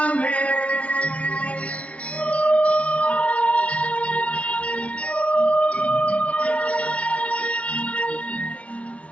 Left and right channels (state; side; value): late; right; 0.064 ms